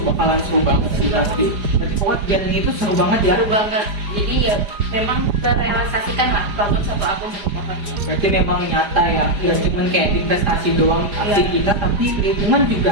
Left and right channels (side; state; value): left; late; 4.9 ms